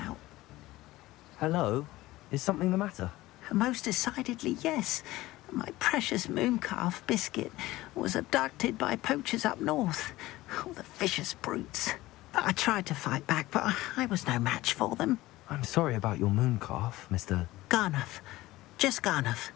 Hello? Is something the matter? Most decidedly, yes. My precious moon calf, Biscuit, was abducted by poachers up north. Oh, the vicious brutes. I tried to fight back, but I was no match for them. I'm sorry about your moon calf, Mr. Garnuff. Just Garnuff.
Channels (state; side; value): quieter; right; 17.8 dB